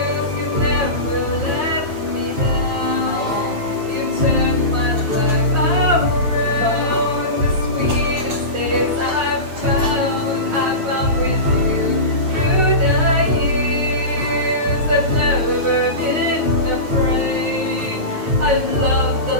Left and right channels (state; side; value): late; left; 9.5 ms